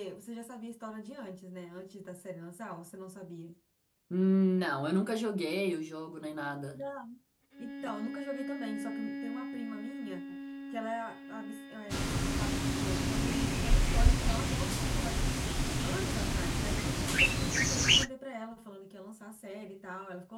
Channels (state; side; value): identical; both; correlation 1.00